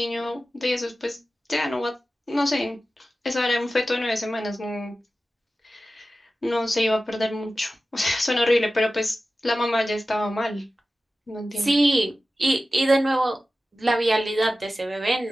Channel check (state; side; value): normal; both; correlation 0.95